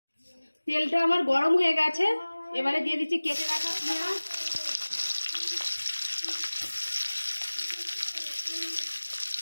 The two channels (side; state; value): both; inverted; correlation -1.00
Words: তেলটা আমার গরম হয়ে গেছে, এবারে দিয়ে দিচ্ছি কেটে রাখা পেঁয়াজ।